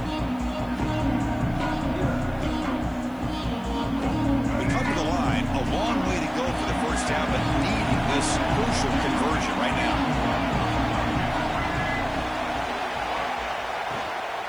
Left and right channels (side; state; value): left; noise; hiss, 29 dB below the sound